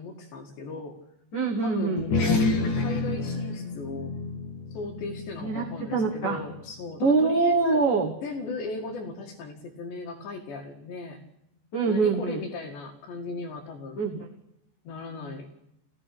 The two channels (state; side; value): late; right; 14 ms